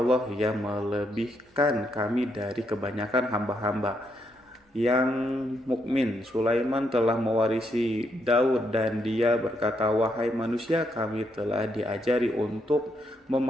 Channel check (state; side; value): normal; both; correlation 0.77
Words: yang melebihkan kami dari kebanyakan hamba-hamba yang mukmin. Sulaiman telah mewarisi Daud dan dia berkata, wahai manusia, kami telah diajari untuk